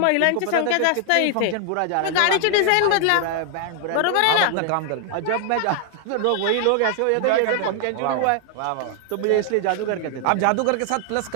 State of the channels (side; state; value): both; different; correlation 0.00